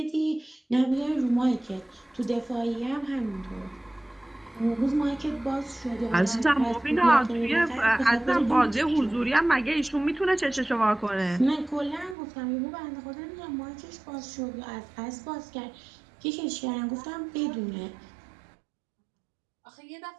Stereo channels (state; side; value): drops out; left; at 12.2 s